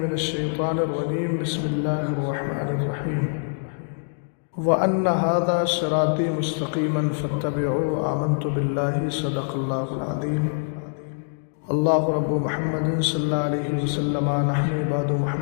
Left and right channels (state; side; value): silent; right; digital silence